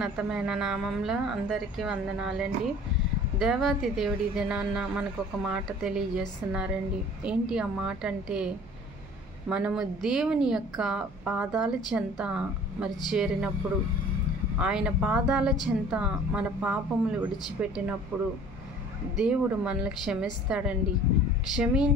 నామంలో అందరికీ వందనాలండి. దేవాతి దేవుడి దినాన్న మనకు ఒక మాట తెలియజేస్తున్నారండి. ఏంటి ఆ మాట అంటే, మనము దేవుని యొక్క పాదాల చెంత చేరినప్పుడు, ఆయన పాదాల చెంత మన పాపములు విడిచిపెట్టినప్పుడు దేవుడు మనల్ని క్షమిస్తాడండి.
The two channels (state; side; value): noise; right; hum, 22 dB below the sound